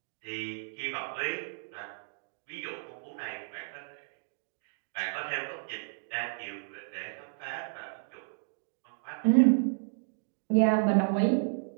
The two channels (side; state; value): left; silent; digital silence